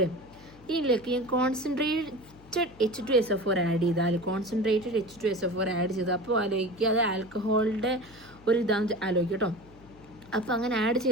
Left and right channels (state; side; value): noise; left; hum, 23 dB below the sound